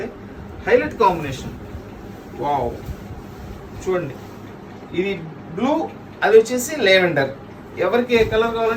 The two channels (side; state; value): both; identical; correlation 1.00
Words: హైలైట్ కాంబినేషన్. వావ్, చూడండి ఇది బ్లూ, అది వచ్చేసి లెవెండర్. ఎవరికి ఏ కలర్